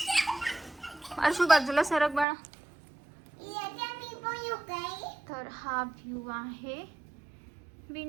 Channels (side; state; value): left; drops out; at 2.2 s